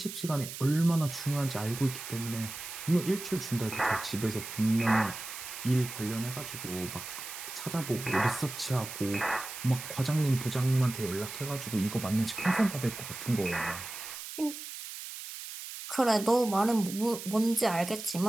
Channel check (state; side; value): noise; right; hiss, 10 dB below the sound